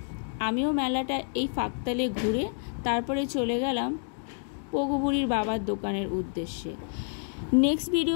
আমিও মেলাটা এই ফাঁকতালে ঘুরে তারপরে চলে গেলাম পোগোবুড়ির বাবার দোকানের উদ্দেশ্যে। নেক্সট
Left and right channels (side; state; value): right; silent; digital silence